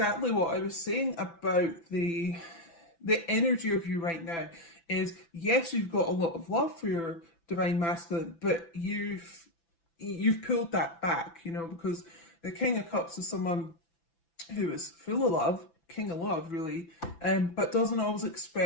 what I was saying about the energy of you right now. Is yes, you've got a lot of love for your divine masculine, but you've pulled that back, because the King of Cups is someone who is full of love, king of love really, but doesn't always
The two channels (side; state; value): right; late; 5.9 ms